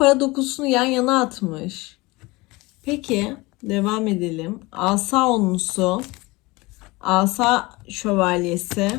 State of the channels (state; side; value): quieter; right; 22.8 dB